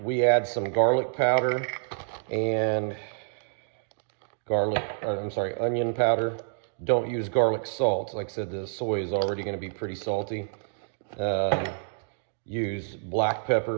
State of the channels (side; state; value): left; silent; digital silence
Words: we add some garlic powder and onion powder. Don't use garlic salt. Like I said, the soy is already going to be pretty salty. Use black